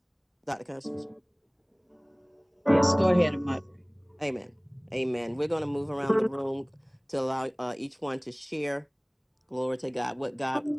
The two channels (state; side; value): identical; both; correlation 1.00